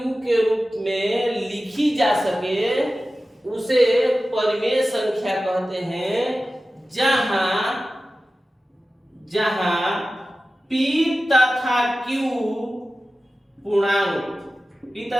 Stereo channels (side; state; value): both; normal; correlation 0.95